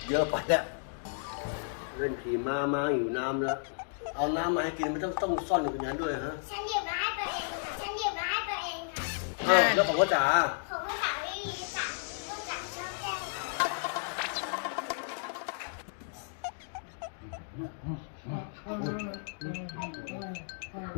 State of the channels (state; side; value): silent; right; digital silence